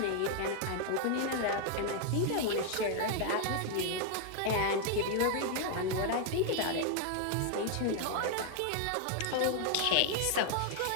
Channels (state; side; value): different; both; correlation 0.00